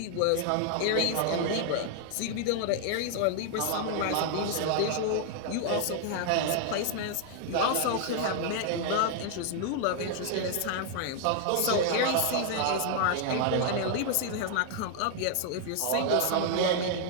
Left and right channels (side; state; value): both; different; correlation 0.00